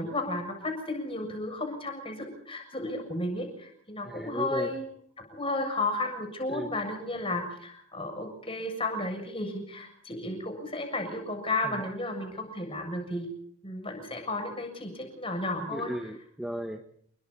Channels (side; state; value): both; normal; correlation 0.16